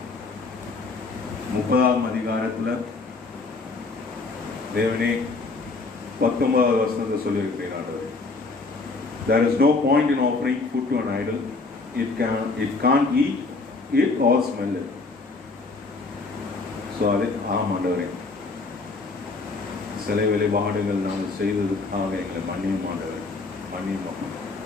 30ஆம் அதிகாரத்தில் தேவனே 19வது வசனத்தை சொல்லியிருக்கிறீர்கள் ஆண்டவரே. There is no point in offering food to an idol. It can't eat it or smell it. So அது ஆண்டவரே, சிலை வழிபாடுகள் நாங்கள் செய்ததுக்காக எங்களை மன்னியும் ஆண்டவரே, மன்னியும்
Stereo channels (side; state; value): right; quieter; 3.8 dB